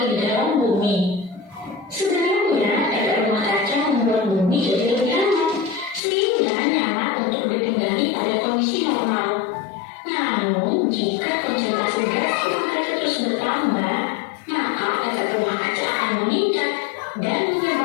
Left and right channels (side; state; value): right; drops out; at 6.0 s